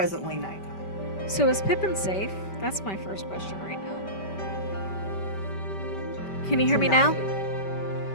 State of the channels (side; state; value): right; late; 5.2 ms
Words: nighttime. So is Pippin safe? That's my first question right now. Can you hear me now?